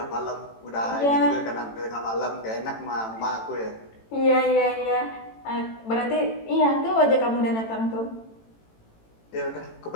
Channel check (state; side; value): late; right; 18 ms